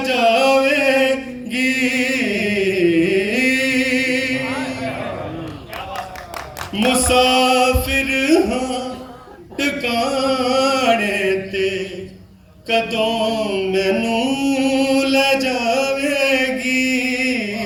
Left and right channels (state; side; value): identical; both; correlation 1.00